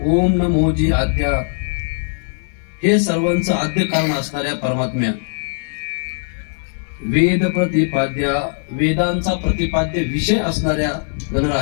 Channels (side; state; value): right; silent; digital silence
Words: ओम नमोजी आद्या, हे सर्वांचं आद्य कारण असणाऱ्या परमात्म्या, वेद प्रतिपाद्या, वेदांचा प्रतिपाद्य विषय असणाऱ्या